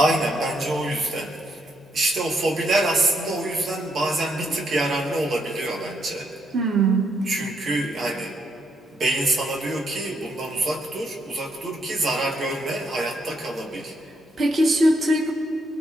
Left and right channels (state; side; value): normal; both; correlation 0.76